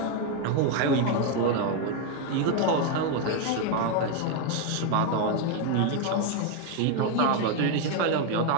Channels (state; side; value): different; both; correlation 0.01